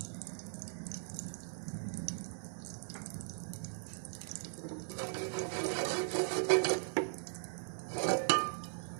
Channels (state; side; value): silent; left; 52 dB below the other